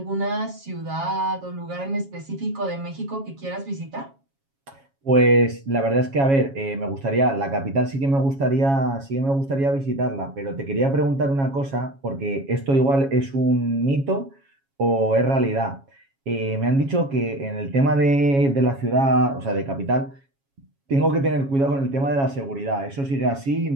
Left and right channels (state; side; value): late; left; 7.3 ms